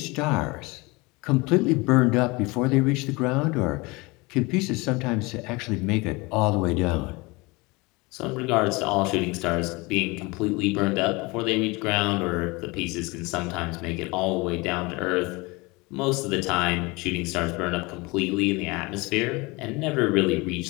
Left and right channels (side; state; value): right; quieter; 24.9 dB